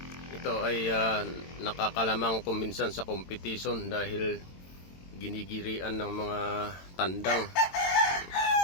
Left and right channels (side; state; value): right; late; 22 ms